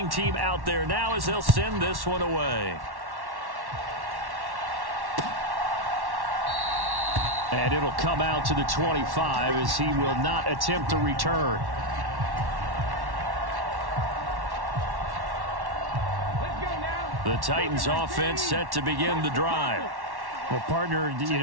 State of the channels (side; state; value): left; late; 1.1 ms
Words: team out there now as they'll send this one away. And it'll come out to the 25 as he will not attempt to return. The Titans offense set to begin the drive. Well, partner,